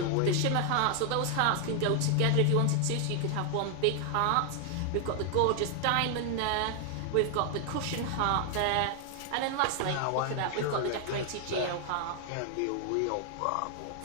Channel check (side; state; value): both; different; correlation 0.00